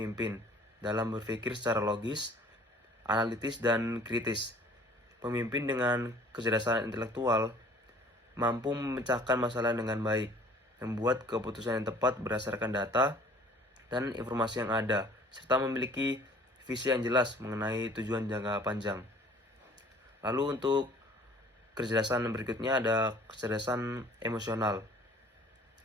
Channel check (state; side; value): normal; both; correlation 0.51